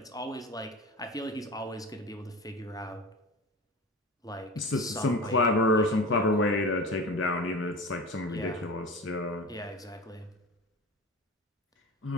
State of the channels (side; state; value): both; normal; correlation 0.31